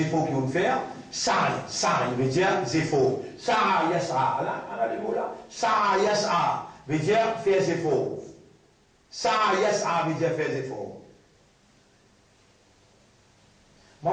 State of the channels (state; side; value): identical; both; correlation 1.00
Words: efforts qu'ils vont faire, sa'i veut dire des efforts. Sa'a yas'a, là, les mots là. Sa'a yas'a veut dire faire des efforts. Sa'a yas'a veut dire faire des efforts.